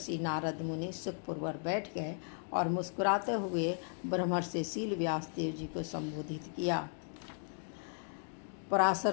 नारद मुनि सुखपूर्वक बैठ गए और मुस्कुराते हुए ब्रह्मर्षि शील व्यास देव जी को संबोधित किया।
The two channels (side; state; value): right; silent; 54 dB below the other